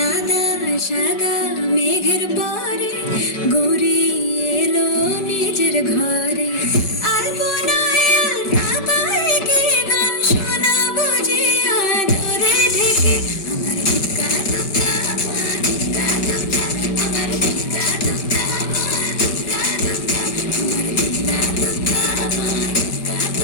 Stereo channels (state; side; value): late; right; 5.2 ms